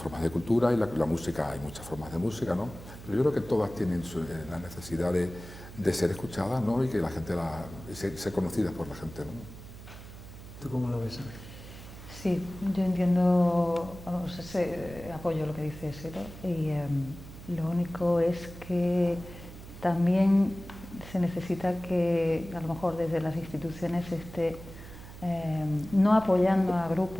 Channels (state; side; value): noise; right; hum, 15 dB below the sound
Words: de cultura, y la música, hay muchas formas de música, ¿no? Pero yo creo que todas tienen la necesidad de ser escuchadas, ¿no? Y que la gente ser conocidas por la gente, ¿no? ¿Tú cómo lo ves? Sí, yo entiendo, vamos, apoyo lo que dices, ¿no? Y lo único es que también se necesita que a lo mejor desde las instituciones no apoyando a